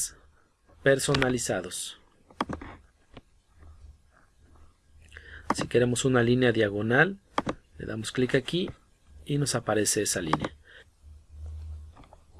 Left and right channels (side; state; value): both; identical; correlation 1.00